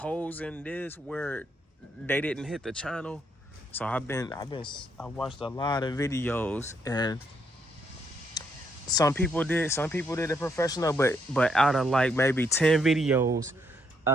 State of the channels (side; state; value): both; normal; correlation 0.74